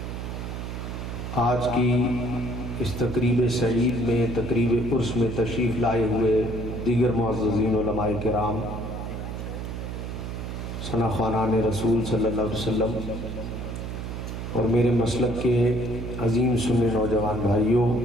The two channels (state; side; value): noise; right; hum, 6 dB below the sound